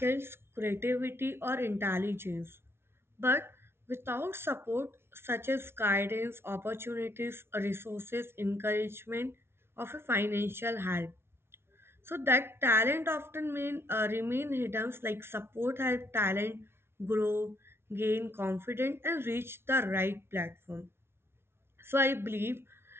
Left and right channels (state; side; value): late; left; 0.12 ms